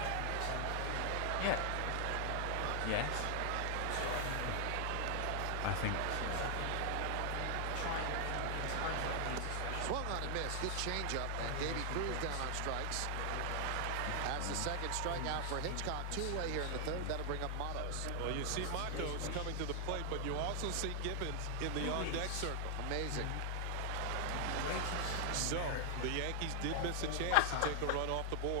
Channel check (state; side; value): different; both; correlation 0.00